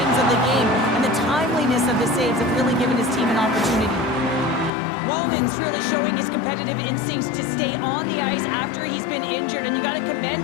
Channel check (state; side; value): drops out; right; at 4.7 s